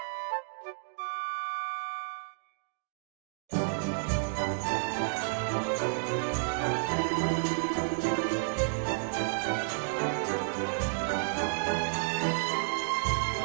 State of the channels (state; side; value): silent; left; digital silence